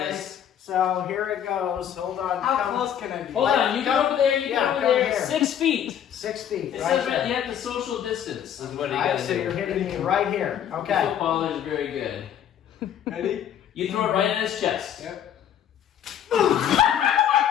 this. So here it goes. Hold on. How close can I be? Hold on, you go over there, you Yeah, go over come there. here. 6 feet. 6 feet. It Right says there. you have to social distance, is what you All right, got to so do. you're hitting me right here. The Okay. footballer is very good. Ready? You throw it right in his chest. Yep.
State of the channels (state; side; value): quieter; right; 9.7 dB